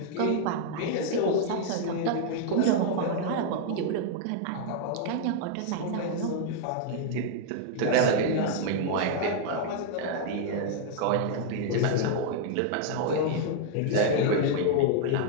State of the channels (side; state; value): both; different; correlation -0.01